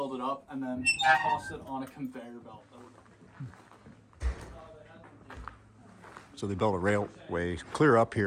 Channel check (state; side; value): identical; both; correlation 1.00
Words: it up, and then tossed it on a conveyor belt. So they built a railway clear up